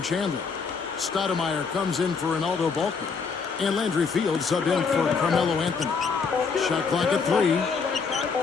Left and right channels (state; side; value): quieter; right; 5.2 dB